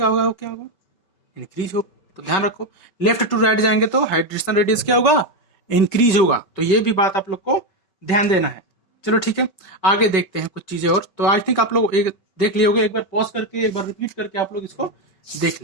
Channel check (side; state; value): right; late; 5.2 ms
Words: होगा, वो क्या होगा, इंक्रीज हो। तो ध्यान रखो, लेफ्ट टू राइट जाएंगे तो हाइड्रेशन रेडियस क्या होगा, इंक्रीज होगा। तो ये भी बात आप लोग को ध्यान देना है। चलो ठीक है, आगे देखते हैं कुछ चीजें और। तो आई थिंक आप लोग एक देख लिए होगे, एक बार पॉज करके एक बार रिपीट करके आप लोग इसको देख